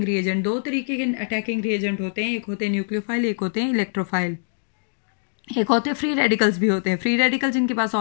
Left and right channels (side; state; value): right; silent; digital silence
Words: रिएजेंट. 2 तरीके के अटैकिंग रिएजेंट होते हैं. एक होते हैं न्यूक्लियोफाइल, एक होते हैं इलेक्ट्रोफाइल. एक होते हैं फ्री रेडिकल्स भी होते हैं. फ्री रेडिकल जिनके पास